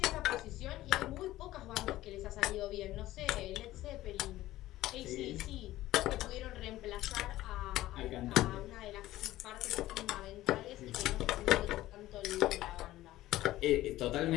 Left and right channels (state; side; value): quieter; right; 15.7 dB